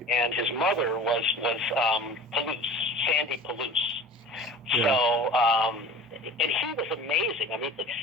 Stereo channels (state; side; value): normal; both; correlation 0.40